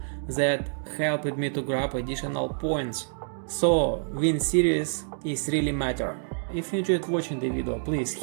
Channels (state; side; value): silent; left; digital silence